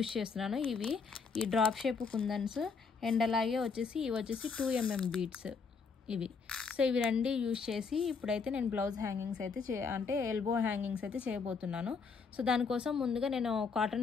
చేస్తున్నాను. ఇవి ఈ డ్రాప్ షేప్ కుందన్స్ అండ్ అలాగే వచ్చేసి ఇవి వచ్చేసి 2mm బీడ్స్ ఇవి. సో ఇవి రెండు యూజ్ చేసి ఇప్పుడైతే నేను బ్లౌజ్ హ్యాంగింగ్స్ అయితే అంటే ఎల్బో హ్యాంగింగ్స్ అయితే చేయబోతున్నాను. సో దానికోసం ముందుగా నేను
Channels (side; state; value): right; quieter; 5.3 dB